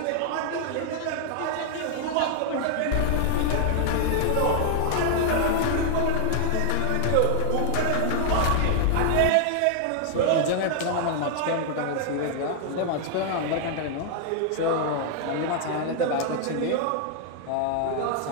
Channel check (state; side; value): different; both; correlation 0.00